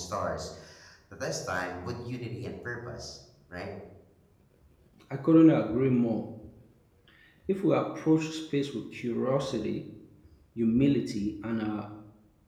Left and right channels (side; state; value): both; identical; correlation 1.00